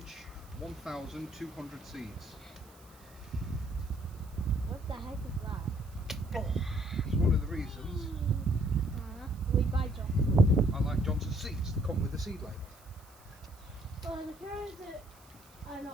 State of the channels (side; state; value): right; noise; hiss, 25 dB below the sound